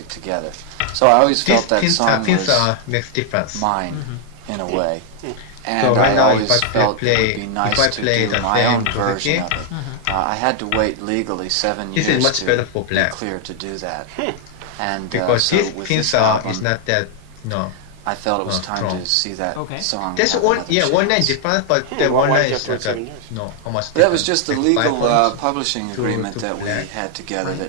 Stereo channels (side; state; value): both; different; correlation 0.00